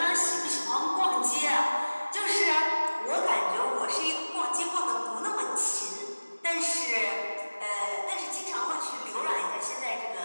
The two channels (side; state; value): both; inverted; correlation -1.00